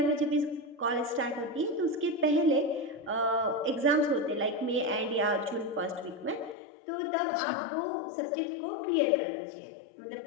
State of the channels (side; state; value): right; drops out; at 6.6 s